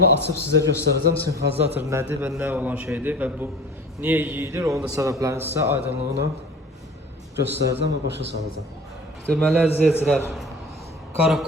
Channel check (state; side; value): normal; both; correlation 0.42